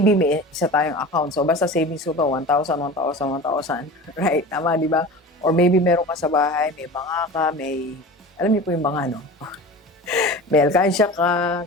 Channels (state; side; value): normal; both; correlation 0.34